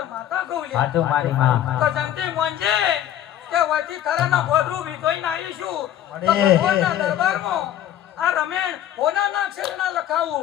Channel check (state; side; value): quieter; right; 11.4 dB